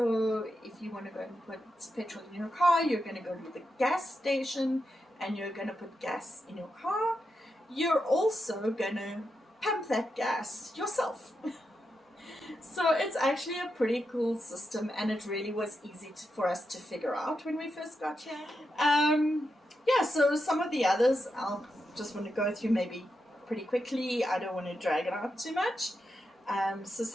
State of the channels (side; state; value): both; normal; correlation 0.86